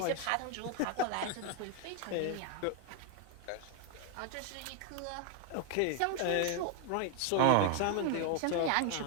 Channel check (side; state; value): both; different; correlation 0.01